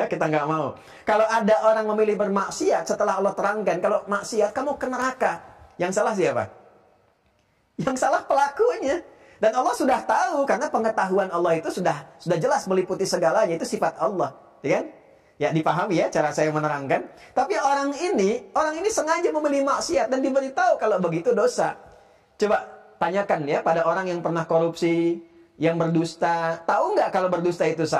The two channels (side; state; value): both; identical; correlation 1.00